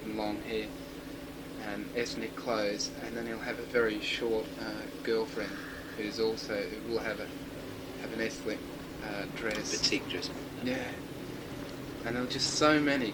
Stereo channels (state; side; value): identical; both; correlation 1.00